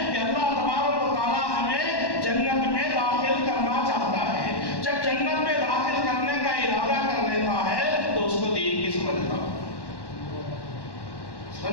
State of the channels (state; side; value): late; right; 1.1 ms